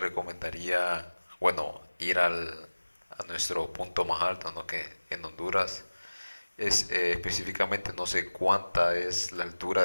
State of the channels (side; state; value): both; inverted; correlation -1.00